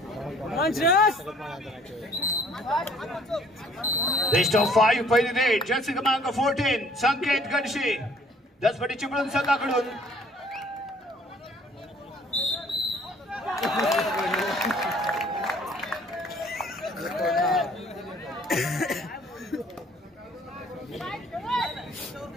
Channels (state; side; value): normal; both; correlation 0.57